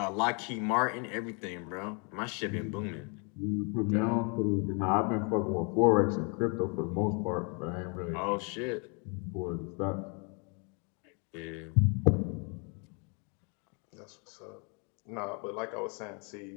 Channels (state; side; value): quieter; right; 35.8 dB